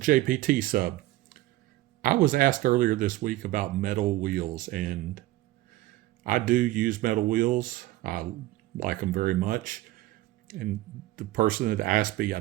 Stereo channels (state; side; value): quieter; left; 17.0 dB